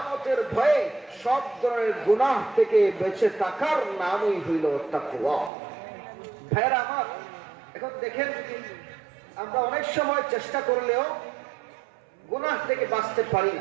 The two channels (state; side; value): drops out; left; at 5.5 s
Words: ভয়ে, সব ধরনের গুনাহ থেকে বেঁচে থাকার নামই হইল তাকওয়া। ভাইরা আমার, এখন দেখেন, আমরা অনেক সময় চেষ্টা করলেও গুনাহ থেকে বাঁচতে পারি